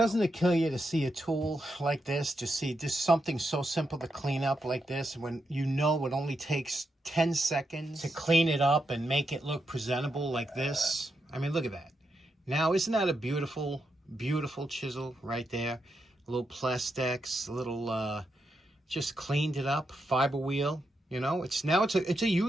Doesn't it kill you to see a tool like this? To see just something so simple to clean up like this, when you know it only takes 10 seconds to clean it up and make it look presentable like this? I mean, look at that. Now, isn't that a beautiful, beautiful chisel right there? A little Plastex, a little, just cleaned it up, fiber wheel. You know, it's a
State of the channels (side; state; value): both; normal; correlation 0.84